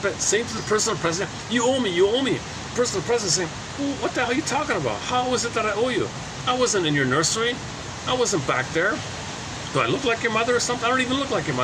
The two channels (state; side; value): identical; both; correlation 1.00